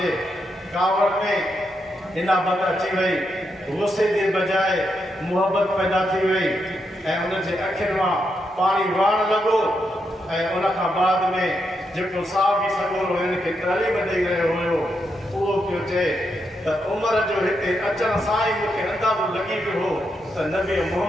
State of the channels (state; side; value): normal; both; correlation 0.82